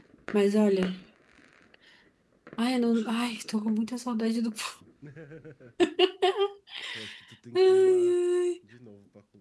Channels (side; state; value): both; identical; correlation 1.00